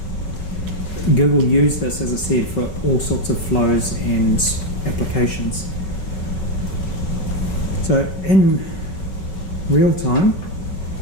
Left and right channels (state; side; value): late; right; 5.3 ms